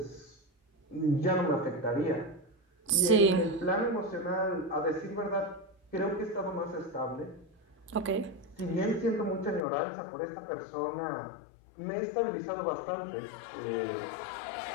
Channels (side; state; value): right; drops out; at 9.6 s